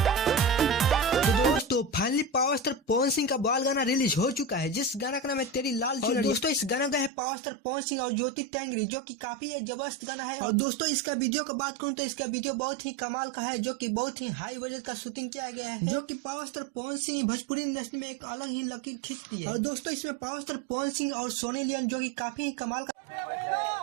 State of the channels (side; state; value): left; drops out; at 7.1 s